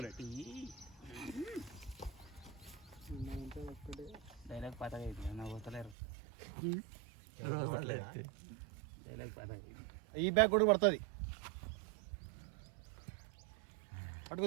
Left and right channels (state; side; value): drops out; left; at 6.0 s